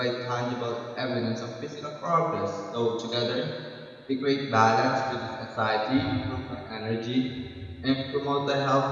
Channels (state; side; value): identical; both; correlation 1.00